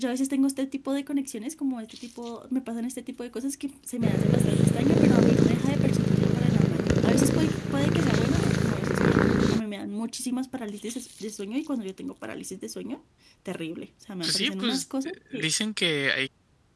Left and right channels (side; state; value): both; identical; correlation 1.00